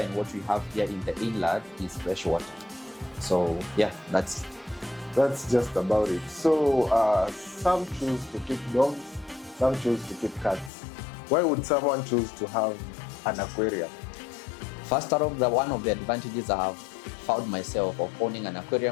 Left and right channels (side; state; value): right; drops out; at 10.7 s